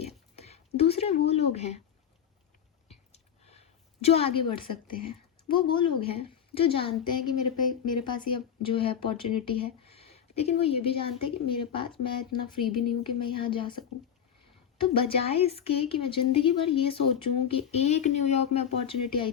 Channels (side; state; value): right; quieter; 8.6 dB